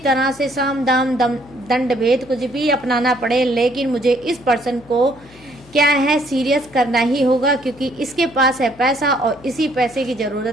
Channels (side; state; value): left; noise; hum, 25 dB below the sound